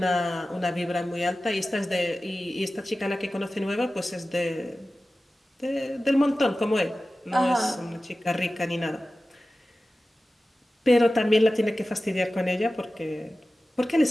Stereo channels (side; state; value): both; normal; correlation 0.95